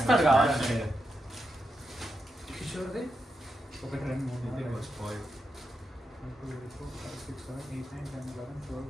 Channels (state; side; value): normal; both; correlation 0.86